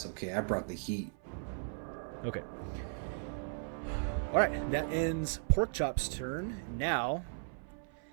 okay. I brought the heat. Okay. Alright, that ends Porkchop's turn. Now,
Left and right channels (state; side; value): silent; left; 53 dB below the other